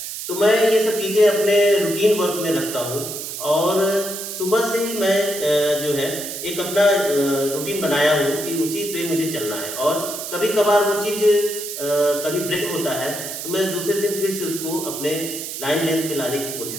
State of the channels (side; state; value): right; noise; hiss, 7 dB below the sound